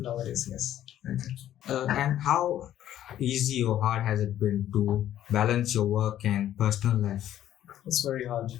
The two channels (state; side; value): quieter; right; 11.9 dB